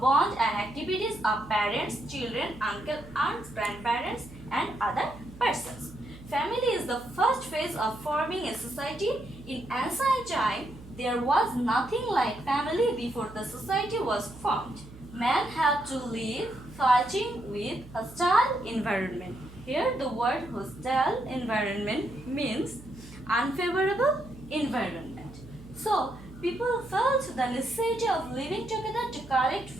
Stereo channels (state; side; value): noise; right; hum, 18 dB below the sound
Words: bond and activities of parents, children, uncle, aunts, grandparents and other persons. Family is the first phase of forming a society. In ancient time, there was nothing like family before the society was formed. Man had to live fighting with hostile environment. Here the word hostile environment means unfavorable environment. So people felt the necessity of living together to collect